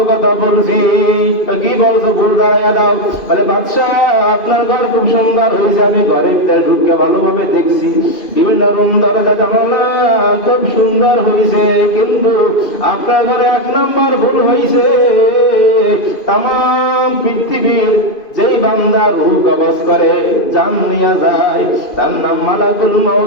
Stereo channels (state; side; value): late; right; 2.5 ms